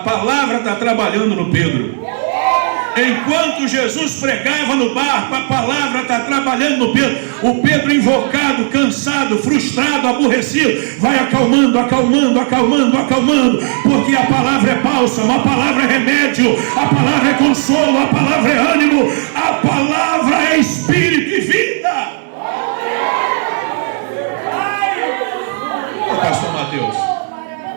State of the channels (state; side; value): silent; left; 57 dB below the other